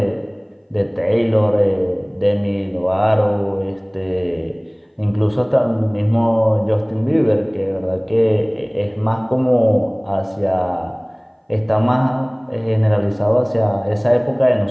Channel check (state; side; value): identical; both; correlation 1.00